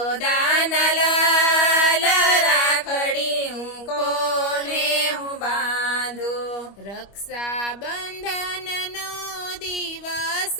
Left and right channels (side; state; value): right; late; 25 ms